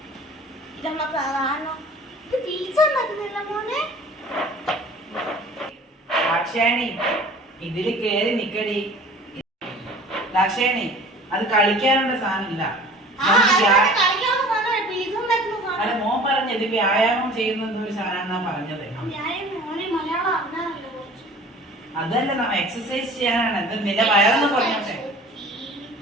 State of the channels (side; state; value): both; normal; correlation 0.45